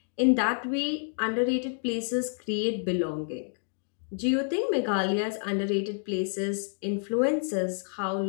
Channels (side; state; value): right; silent; 59 dB below the other